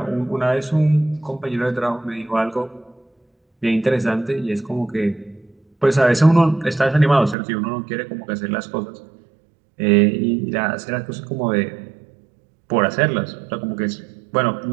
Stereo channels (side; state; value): left; drops out; at 7.4 s